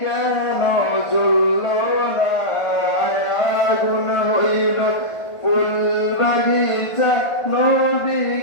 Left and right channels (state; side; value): late; right; 1.6 ms